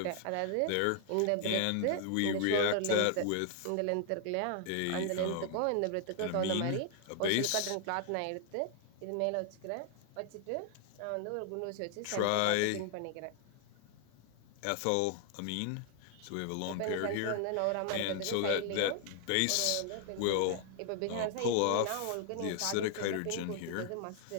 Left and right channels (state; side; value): different; both; correlation 0.00